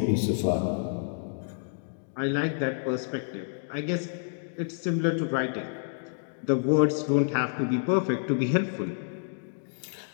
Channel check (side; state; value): right; silent; digital silence